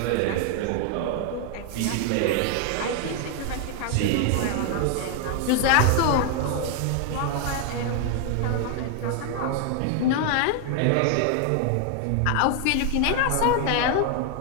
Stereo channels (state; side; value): different; both; correlation 0.00